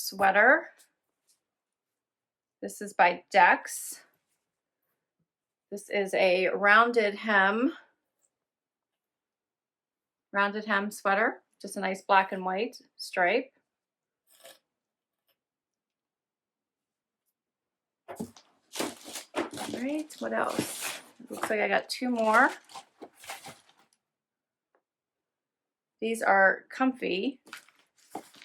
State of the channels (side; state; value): both; identical; correlation 1.00